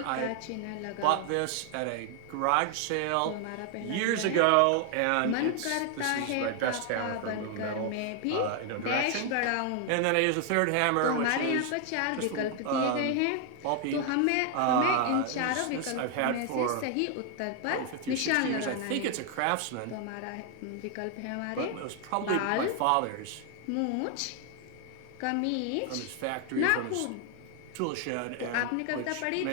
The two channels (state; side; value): different; both; correlation 0.00